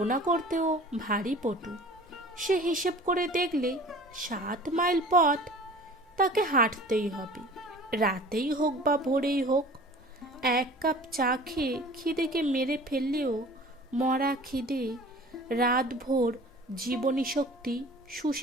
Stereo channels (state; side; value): normal; both; correlation 0.44